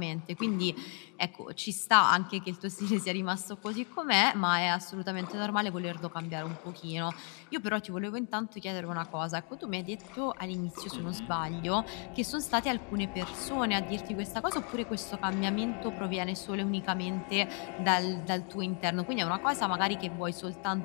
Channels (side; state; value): right; quieter; 39.3 dB